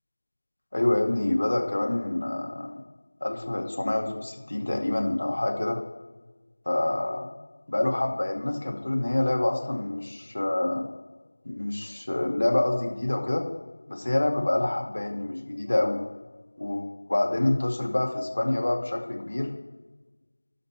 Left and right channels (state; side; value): inverted; both; correlation -1.00